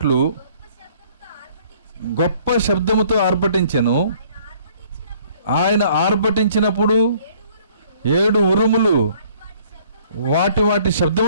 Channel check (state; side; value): inverted; both; correlation -0.59